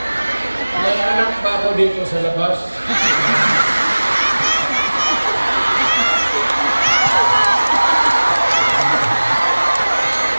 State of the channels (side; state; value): both; inverted; correlation -1.00